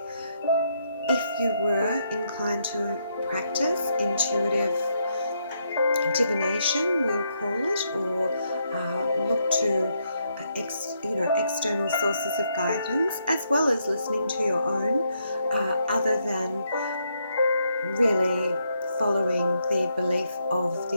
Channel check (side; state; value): both; inverted; correlation -0.77